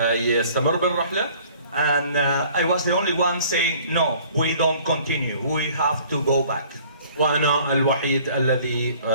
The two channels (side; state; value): both; inverted; correlation -0.53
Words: بالرحلة. And I was the only one saying, no, we don't continue, we have to go back. وأنا الوحيد الذي